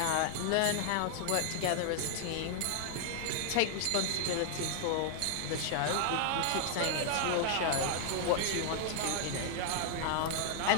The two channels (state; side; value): different; both; correlation 0.00